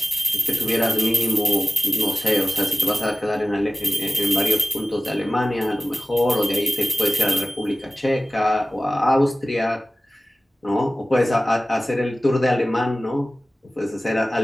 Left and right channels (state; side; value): normal; both; correlation 0.96